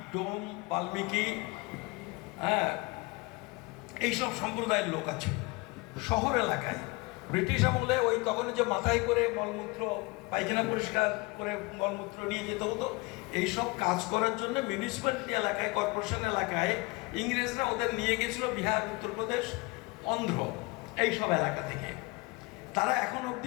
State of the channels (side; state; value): right; quieter; 25.4 dB